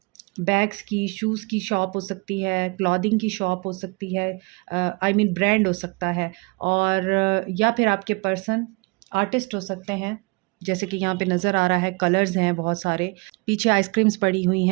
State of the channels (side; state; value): left; quieter; 28.8 dB